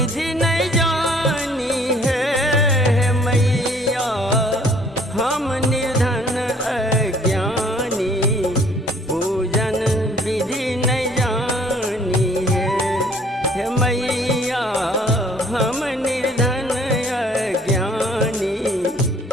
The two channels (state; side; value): normal; both; correlation 0.58